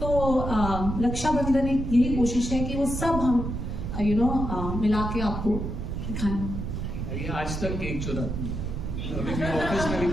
रक्षाबंधन एक यही कोशिश है कि वो सब हम मिला के आपको दिखाएं। आज तक केक चुरा, अभी मैं ऑफिस में भी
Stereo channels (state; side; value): noise; right; rumble, 4 dB below the sound